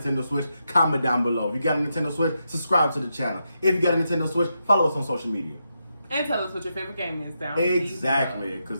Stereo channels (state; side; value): inverted; both; correlation -0.84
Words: Switch, comment down below. If you got a Nintendo Switch, subscribe to the channel. If you got a Nintendo Switch, follow us on social media. And tell us what your favorite game is down Exactly,